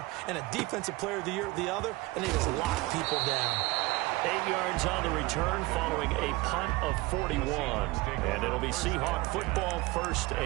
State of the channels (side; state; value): left; quieter; 21.6 dB